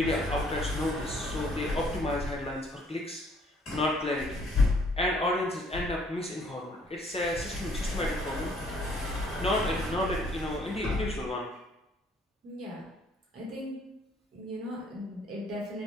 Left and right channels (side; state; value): both; normal; correlation 0.62